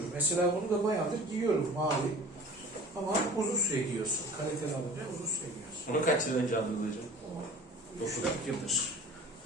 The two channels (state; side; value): normal; both; correlation 0.44